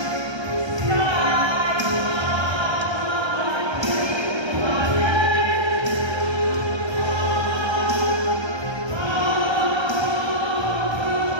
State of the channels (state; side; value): late; left; 1.3 ms